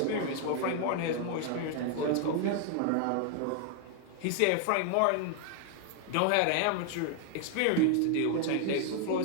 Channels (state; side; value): different; both; correlation 0.00